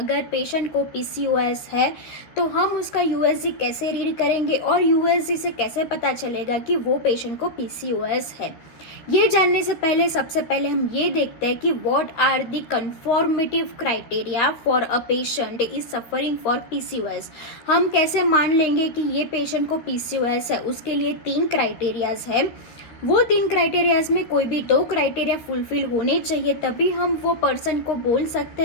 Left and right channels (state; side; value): late; right; 13 ms